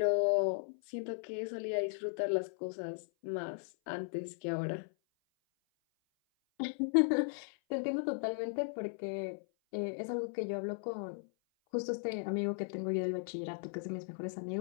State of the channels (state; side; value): silent; right; 53 dB below the other